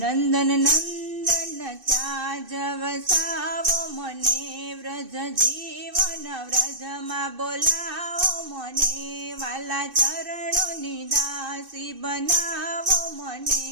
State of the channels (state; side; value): late; left; 2.6 ms